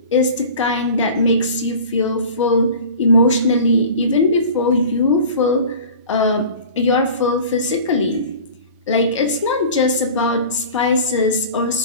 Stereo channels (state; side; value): inverted; both; correlation -0.39